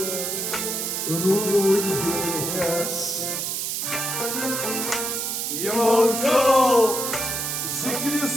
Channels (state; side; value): noise; right; hiss, 2 dB below the sound